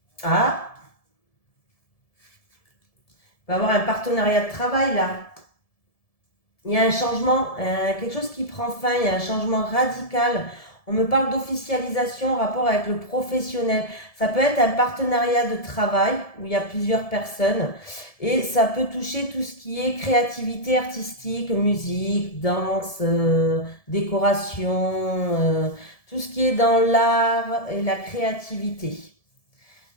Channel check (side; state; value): right; late; 1.7 ms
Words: Ah, il va y avoir un partenariat de travail là. Il y a un changement, quelque chose qui prend fin, il y a un changement radical. On me parle d'officialisation en rapport avec le professionnel. Ça peut être un partenariat de travail où il y a plusieurs personnes et ça peut toucher tout ce qui est créativité artistique, musique, danse, décoration, tout ce qui est dans l'art et la créativité.